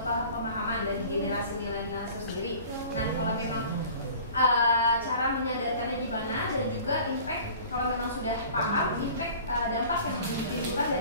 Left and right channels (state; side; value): inverted; both; correlation -0.45